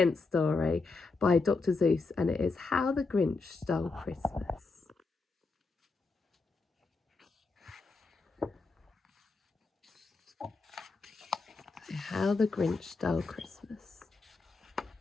story by Dr. Seuss, and it is How the Grinch Stole Christmas. How the Grinch Stole Christmas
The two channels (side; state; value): right; quieter; 3.9 dB